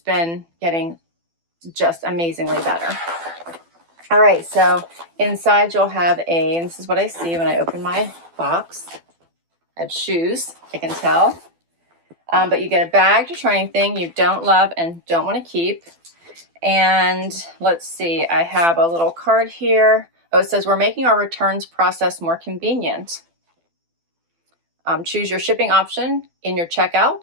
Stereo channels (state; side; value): late; left; 12 ms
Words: getting just amazingly better. All right, so inside you'll have and this is what I see when I open my box. I have shoes, I can tell. But you get a bag to try anything you don't love and don't want to keep. And let's see, I have a little card here. Oh, it says we're making our returns process more convenient. Choose your shipping option in your